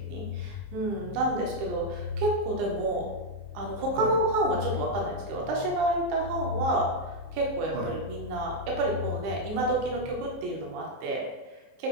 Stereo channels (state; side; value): late; left; 15 ms